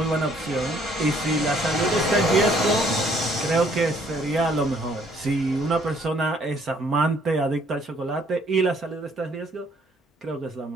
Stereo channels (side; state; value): both; normal; correlation 0.63